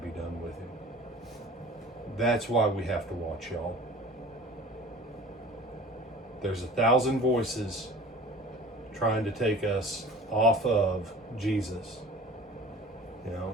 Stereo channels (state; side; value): normal; both; correlation 0.42